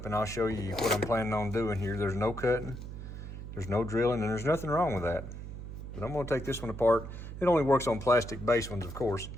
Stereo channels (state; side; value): noise; right; hum, 10 dB below the sound